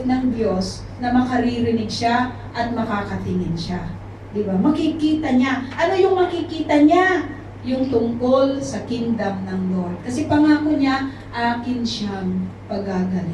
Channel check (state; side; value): identical; both; correlation 1.00